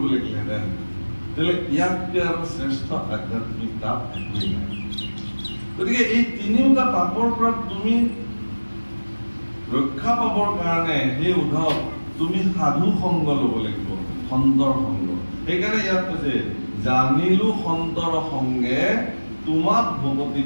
লাগিলেহেঁতেন, তেতিয়াহ'লে ইয়াতকৈ আৰু শ্ৰেষ্ঠ আধ্যাত্মিক তাপ একোৱেই নাই। গতিকে এই তিনিওটা তাপৰ পৰা তুমি ৰক্ষা পাবৰ কাৰণে সেই উদ্ধৱ তুমি সাধু সংগ ল'ব লাগিব, সন্তৰ সংগ। সেইকাৰণে ইয়াত কৈছে জানিলো সন্তৰ সংগে তোমাক ভকতি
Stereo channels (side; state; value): both; inverted; correlation -1.00